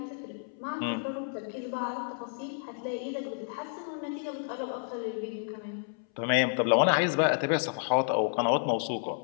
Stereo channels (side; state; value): right; silent; 57 dB below the other